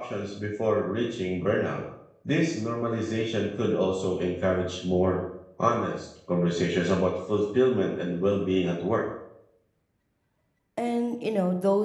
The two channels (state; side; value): identical; both; correlation 1.00